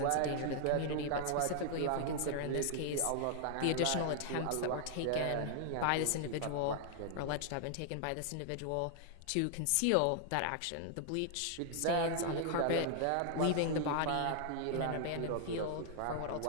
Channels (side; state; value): both; different; correlation 0.00